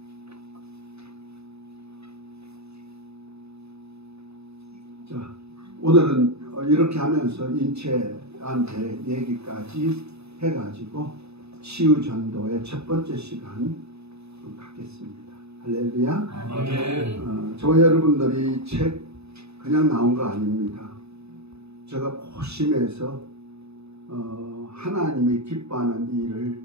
자, 오늘은 이렇게 하면서 인체한테 얘기까지 해가지고 치유 전도의 첫 번째 시간 갖겠습니다. 할렐루야. 아멘. 저와 여러분들이 책 그냥 나온 거 아닙니다. 제가 고심해서 하나님이 기뻐하는 일을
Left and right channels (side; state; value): left; late; 0.79 ms